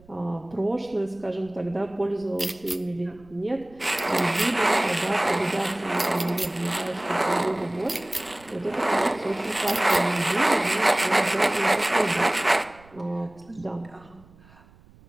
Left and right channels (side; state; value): right; noise; rumble, 26 dB below the sound